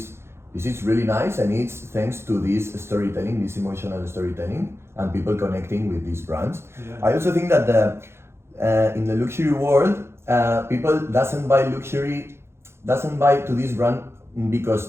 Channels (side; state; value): left; late; 0.12 ms